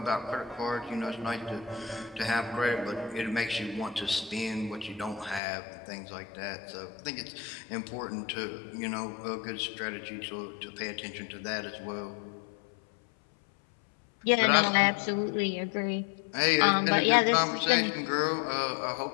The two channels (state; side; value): drops out; right; at 5.4 s